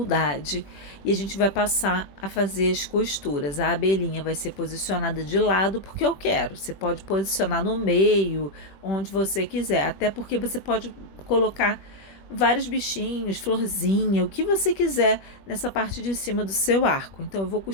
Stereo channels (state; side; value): late; right; 21 ms